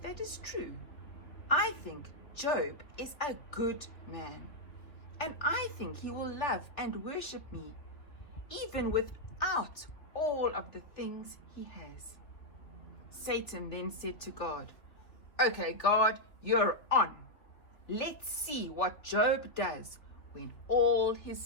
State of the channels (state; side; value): late; right; 3.4 ms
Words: that is true. I think Job is a good man, and I think he will love and worship me even without all of the things he has." Satan then said to God, "Okay, God, you're on. Let's see what Job does when all his